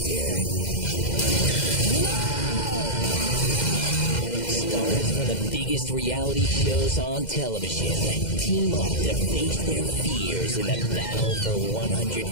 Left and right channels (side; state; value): right; late; 2.0 ms